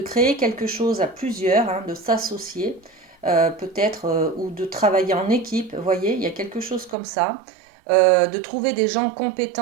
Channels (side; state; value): left; drops out; at 7.0 s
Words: créer quelque chose à plusieurs, hein, de s'associer, peut-être, ou de travailler en équipe. Vous voyez, il y a quelque chose comme ça. De trouver des gens